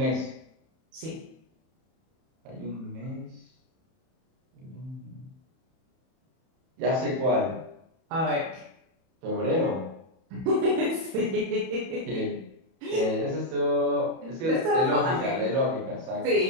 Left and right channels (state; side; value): late; left; 31 ms